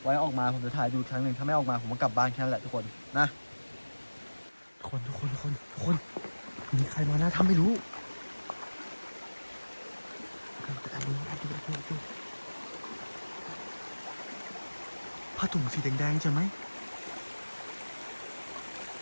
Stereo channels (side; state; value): both; inverted; correlation -1.00